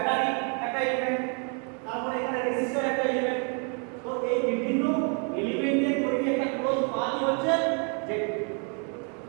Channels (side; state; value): left; quieter; 39.2 dB